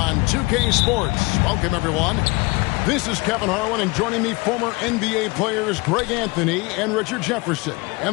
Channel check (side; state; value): right; quieter; 25.3 dB